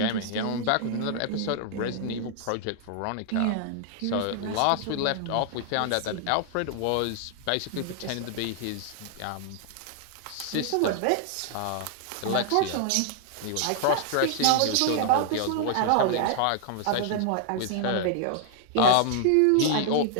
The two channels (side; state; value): both; different; correlation 0.00